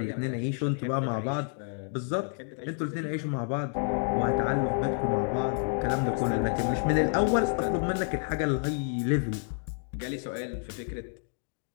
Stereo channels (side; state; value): right; silent; 58 dB below the other